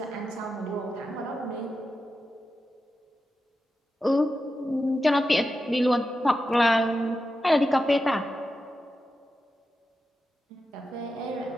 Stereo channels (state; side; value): normal; both; correlation 0.90